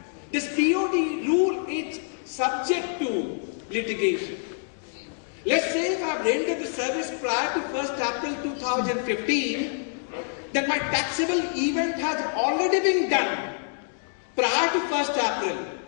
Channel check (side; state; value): right; silent; 61 dB below the other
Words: This POT rule is subject to litigation. Let's say if I've rendered the service prior to 1st April 2015, then my taxable event has already been done prior to 1st April.